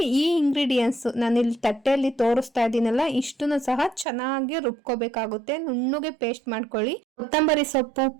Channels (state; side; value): drops out; left; at 4.0 s